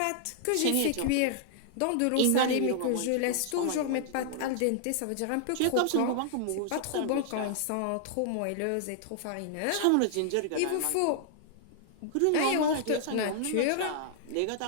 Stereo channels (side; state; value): both; different; correlation -0.01